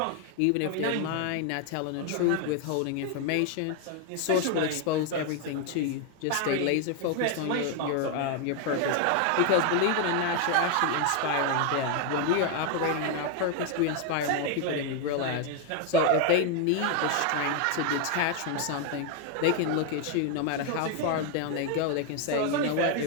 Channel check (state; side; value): different; both; correlation 0.01